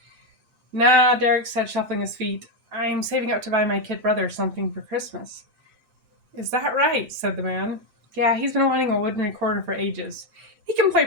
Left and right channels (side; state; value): left; late; 7.8 ms